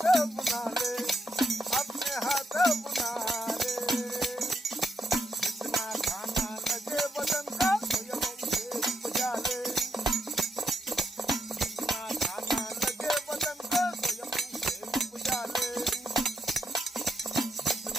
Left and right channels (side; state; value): both; normal; correlation 0.80